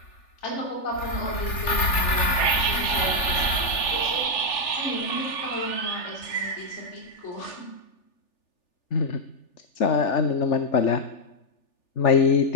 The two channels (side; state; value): right; late; 3.4 ms